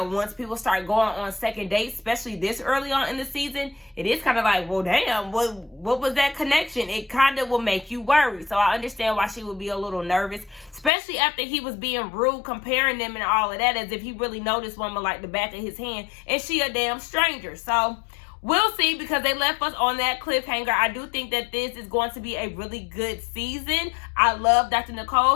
people start going on second dates, especially this early on in the season, it is kind of like, well, damn, what was that connection? It kind of will make you worry. So I understand why she would be a little nervous, especially after he was being rude, comparing them and all of that, as if he really noticed woman like the back of his hand, and she a damn stranger. So we'll see, because they left us on that cliffhanger. I do think that this is going to be a really good season. I love Dr.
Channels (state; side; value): drops out; right; at 10.9 s